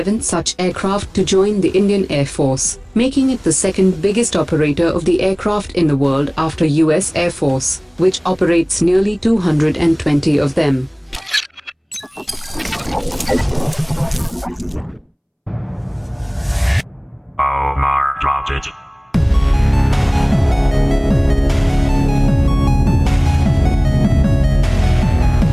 such aircraft to join the Indian Air Force, making it the second biggest operator of the aircraft in the world after US Air Force, which operates nearly 220 of them.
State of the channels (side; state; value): both; identical; correlation 1.00